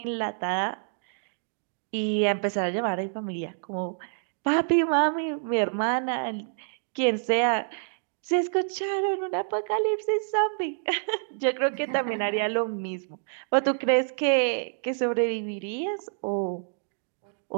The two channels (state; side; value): silent; left; digital silence